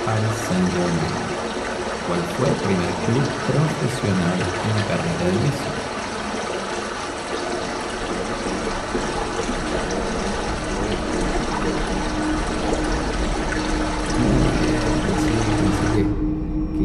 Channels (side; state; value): both; identical; correlation 1.00